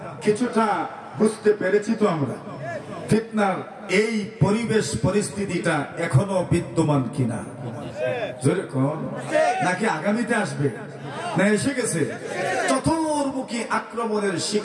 কিছুটা বুঝতে পেরেছি তো আমরা। ফিতনার এই পরিবেশ পরিস্থিতিটা এখনো বিদ্যমান কিনা, নাকি আগামীতে আসবে, না এসে গেছে? চতুর্মুখী আক্রমণের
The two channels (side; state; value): both; identical; correlation 1.00